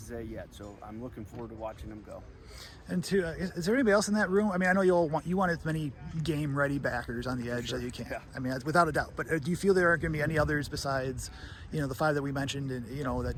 Zay yet. So I'm looking forward to watching him go. And is there anybody else in that room? I know you want as many game-ready backers on the edge that you can. Yeah. Without a doubt. But do you feel there aren't going to be any others besides, the 5 that we mentioned, and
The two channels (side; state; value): both; identical; correlation 1.00